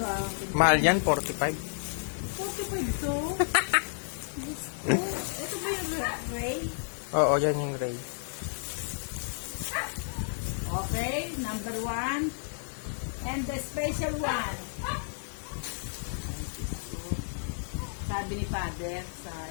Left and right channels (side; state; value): right; silent; digital silence